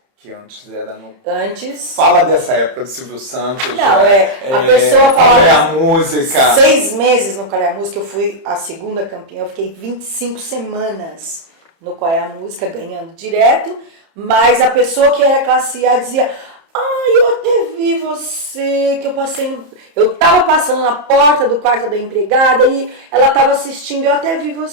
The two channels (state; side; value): late; left; 30 ms